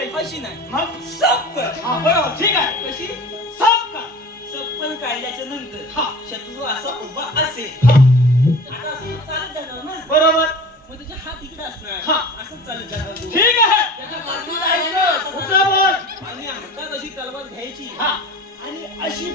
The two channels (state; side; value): normal; both; correlation 0.38